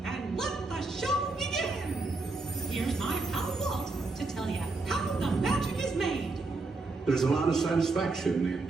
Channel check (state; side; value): quieter; left; 3.5 dB